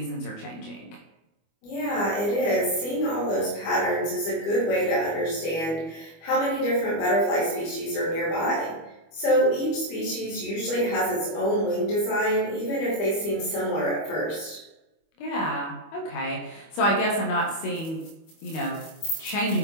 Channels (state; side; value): late; right; 25 ms